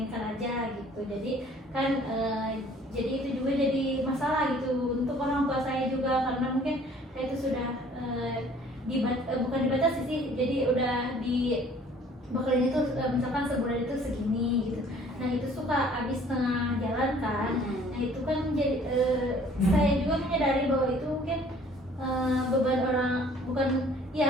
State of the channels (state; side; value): normal; both; correlation 0.55